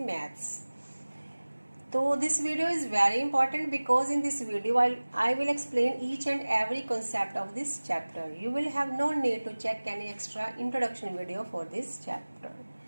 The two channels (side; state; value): both; inverted; correlation -1.00